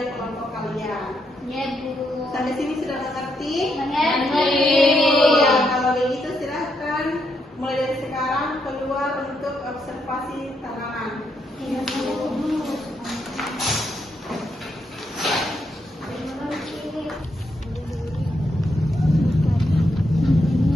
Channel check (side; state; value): both; normal; correlation 0.79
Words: kelompok kalian. Iya, Bu. Sampai sini sudah mengerti? Mengerti. Ya, kalau begitu silahkan mulai dari sekarang keluar untuk observasi tanaman. Iya, Bu.